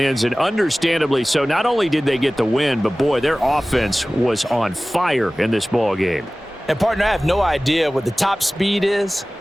and understandably so. Not only did they get the win, but, boy, their offense was on fire in this ball game. And, partner, I have no idea what the top speed is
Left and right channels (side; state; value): both; normal; correlation 0.98